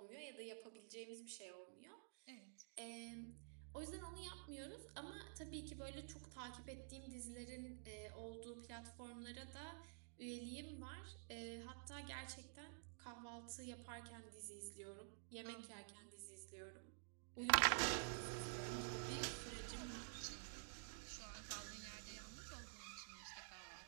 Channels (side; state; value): left; silent; digital silence